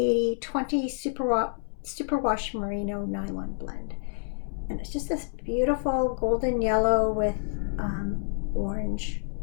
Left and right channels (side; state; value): right; silent; 59 dB below the other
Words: superwash merino nylon blend. And it's just this beautiful golden yellow with orange